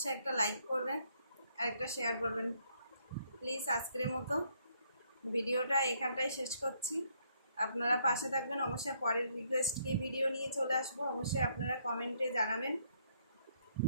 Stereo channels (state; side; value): inverted; both; correlation -0.69